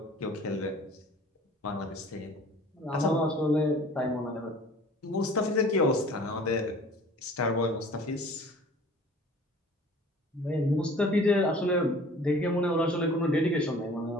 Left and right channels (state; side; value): normal; both; correlation 0.48